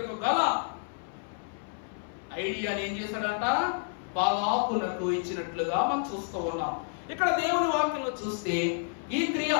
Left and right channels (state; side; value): silent; right; 58 dB below the other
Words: గల ఐడియాని ఏం చేశాడంట? బాలాకునకు ఇచ్చినట్లుగా మనం చూస్తూ ఉన్నాం. ఇక్కడ దేవుని వాక్యంలో చూస్తే ఈ క్రియ